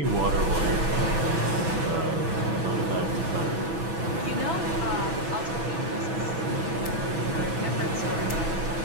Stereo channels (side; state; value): left; late; 6.1 ms